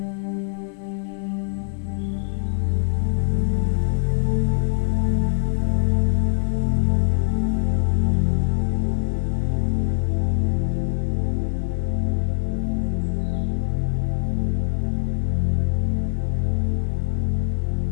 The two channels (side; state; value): right; silent; digital silence